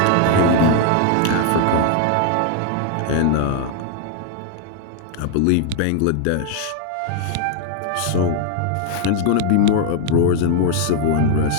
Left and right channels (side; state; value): both; different; correlation 0.00